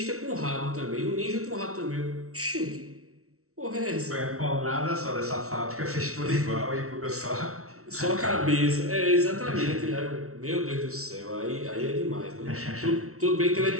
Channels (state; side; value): late; left; 0.63 ms